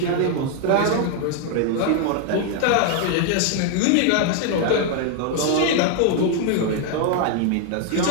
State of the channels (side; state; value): both; different; correlation 0.00